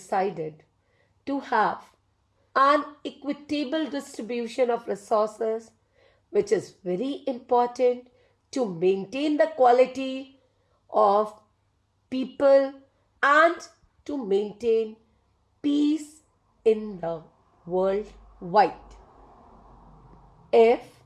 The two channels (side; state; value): both; identical; correlation 1.00